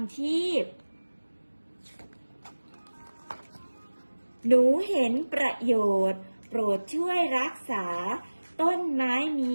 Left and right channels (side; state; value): both; inverted; correlation -1.00